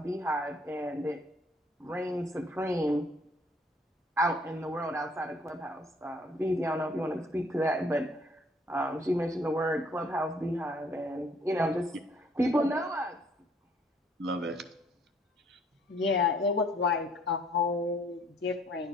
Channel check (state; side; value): normal; both; correlation 0.62